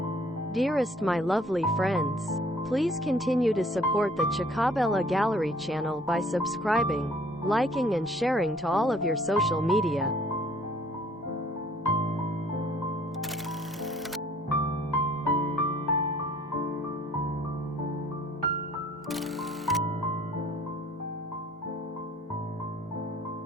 Dearest my lovely friends, please continue to support the Chacabella Gallery channel by subscribing, liking and sharing to all of your social media.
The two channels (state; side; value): normal; both; correlation 0.57